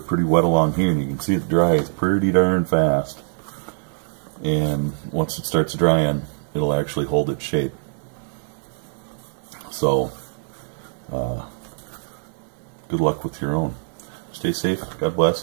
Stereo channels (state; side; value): silent; left; digital silence